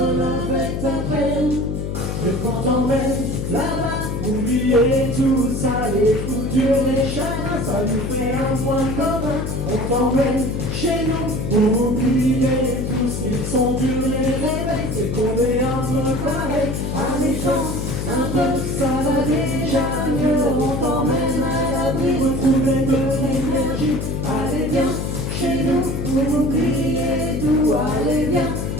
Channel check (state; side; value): noise; left; hum, 3 dB below the sound